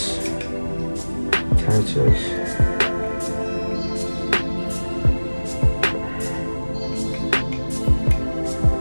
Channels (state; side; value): inverted; both; correlation -1.00